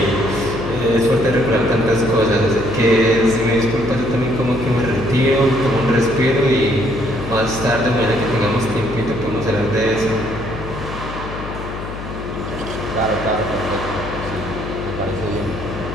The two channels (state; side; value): noise; left; hum, 9 dB below the sound